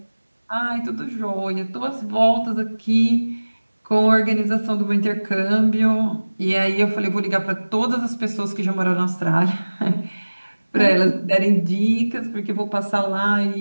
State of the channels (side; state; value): both; inverted; correlation -1.00